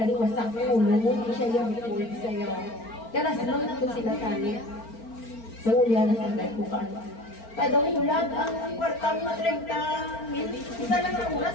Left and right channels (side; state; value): right; late; 4.4 ms